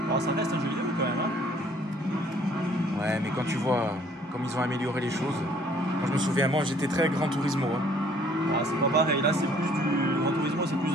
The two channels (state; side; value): normal; both; correlation 0.59